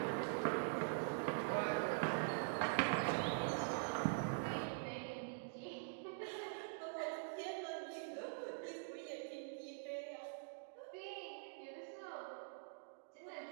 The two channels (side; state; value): left; silent; digital silence